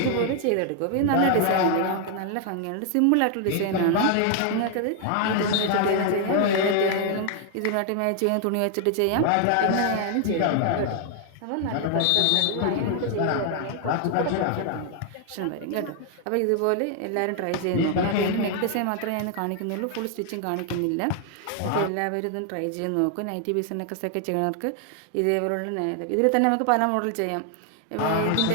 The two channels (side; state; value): both; different; correlation 0.00